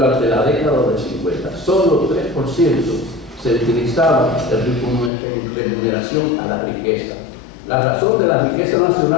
la década del 50. Solo 3% se utilizaba en remuneración a la riqueza. La razón de la riqueza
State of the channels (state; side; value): drops out; right; at 5.1 s